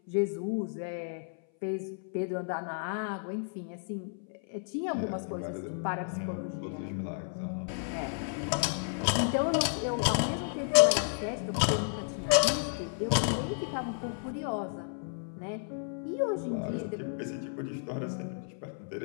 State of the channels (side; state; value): right; silent; 56 dB below the other